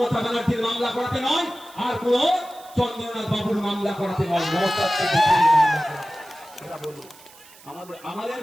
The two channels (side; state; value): right; noise; hiss, 23 dB below the sound